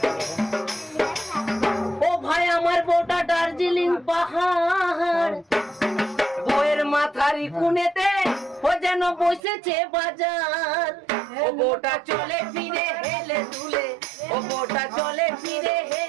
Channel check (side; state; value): left; drops out; at 9.4 s